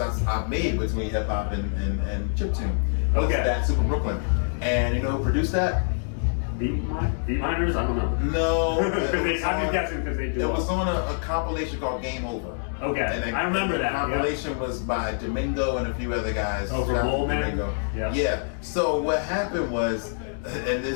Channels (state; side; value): silent; right; digital silence